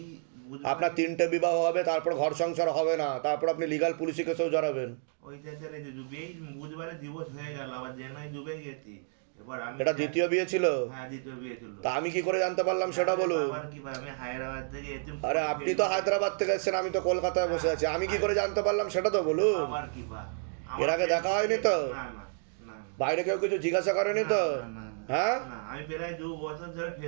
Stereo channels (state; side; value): silent; left; 58 dB below the other